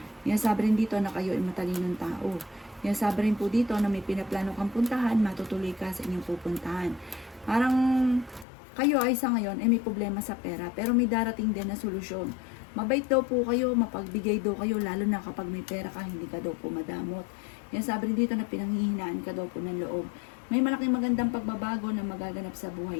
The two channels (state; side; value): drops out; right; at 8.5 s